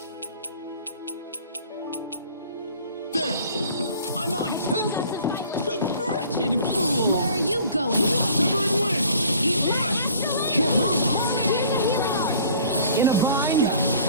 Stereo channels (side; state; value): both; inverted; correlation -0.51